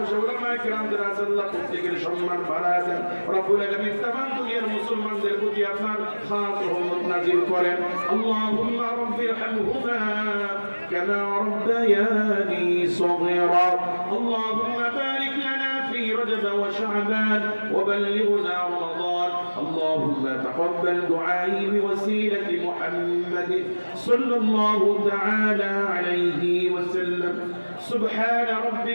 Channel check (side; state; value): both; inverted; correlation -1.00